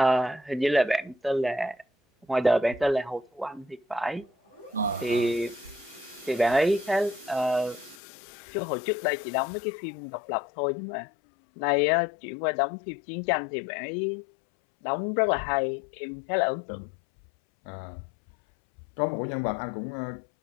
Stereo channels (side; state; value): right; drops out; at 8.0 s